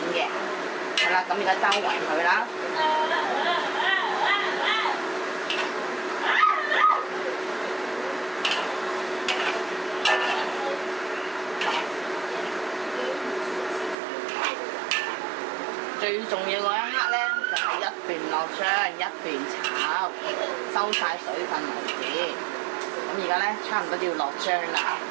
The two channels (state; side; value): drops out; left; at 14.0 s